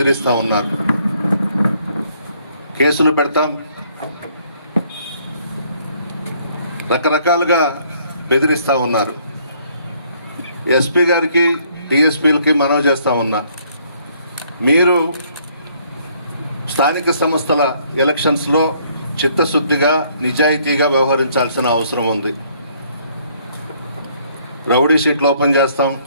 ఉన్నారు. కేసులు పెడతాం, రకరకాలుగా బెదిరిస్తూ ఉన్నారు. ఎస్పీ గారికి, డిఎస్పీలకి మనవి చేస్తూ ఉన్నా, మీరు స్థానిక సంస్థల ఎలక్షన్స్లో చిత్తశుద్ధిగా, నిజాయితీగా వ్యవహరించాల్సిన అవసరం ఉంది. రౌడీ షీట్లు ఓపెన్ చేస్తాం,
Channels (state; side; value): inverted; both; correlation -0.65